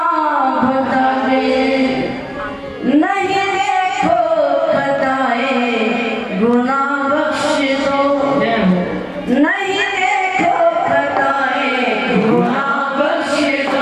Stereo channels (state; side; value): identical; both; correlation 1.00